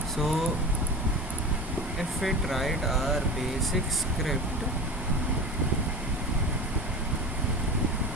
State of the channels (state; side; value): normal; both; correlation 0.30